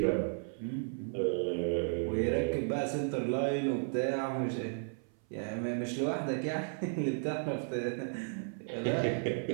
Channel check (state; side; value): silent; left; 55 dB below the other